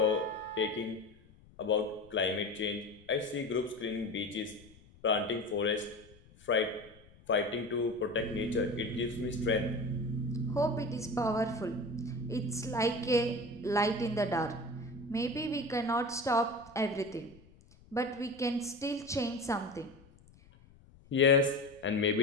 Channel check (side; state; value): left; noise; rumble, 25 dB below the sound